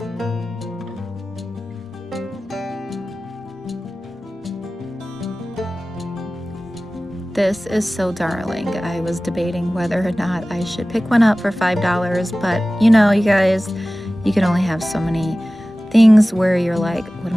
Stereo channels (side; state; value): both; normal; correlation 0.97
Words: This is so darling. I was debating whether or not I should pick one up for $5, but you know, you guys, you can only have so many things where you're like, what